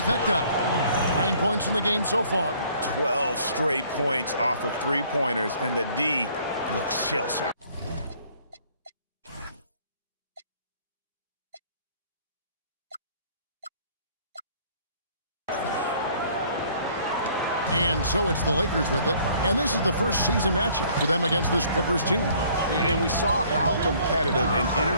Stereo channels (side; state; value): both; inverted; correlation -0.58